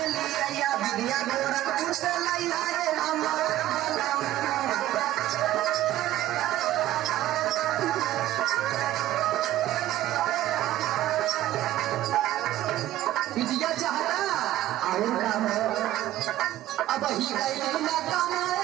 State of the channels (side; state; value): left; quieter; 14.3 dB